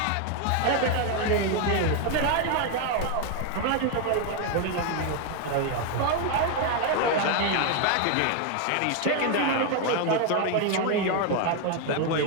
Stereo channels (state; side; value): different; both; correlation 0.01